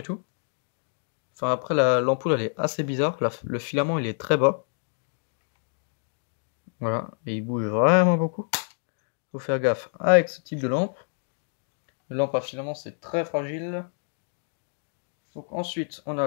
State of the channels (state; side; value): silent; right; digital silence